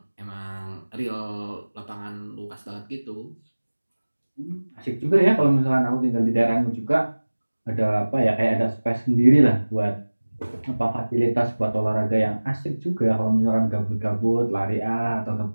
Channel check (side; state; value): both; inverted; correlation -1.00